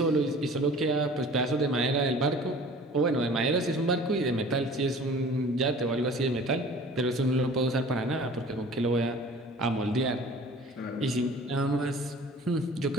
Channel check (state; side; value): normal; both; correlation 0.45